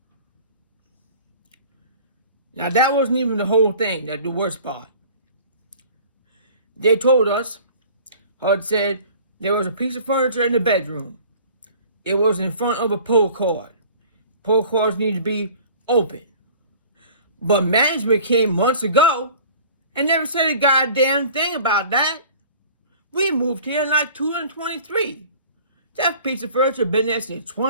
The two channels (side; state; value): both; inverted; correlation -0.47